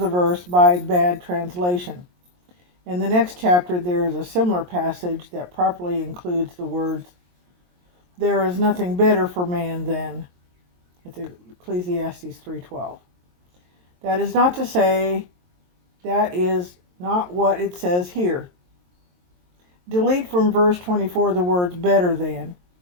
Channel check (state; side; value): late; left; 22 ms